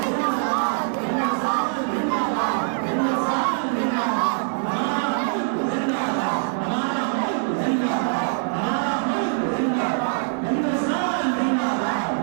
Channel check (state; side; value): silent; left; 63 dB below the other